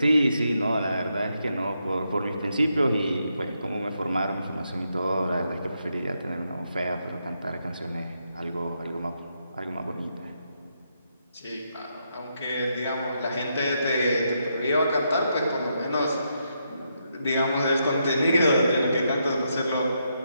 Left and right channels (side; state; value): both; inverted; correlation -0.80